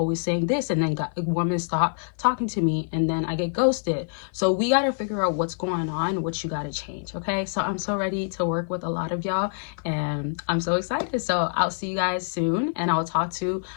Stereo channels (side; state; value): right; silent; 55 dB below the other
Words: saying this, and then women stop talking to me, and then I get ghosted. So we got to figure out what's going on, what you got to change. Okay, so I'm so ready to work with a lot of y'all, and I'm so excited. So I'll see you guys soon, and I'll talk to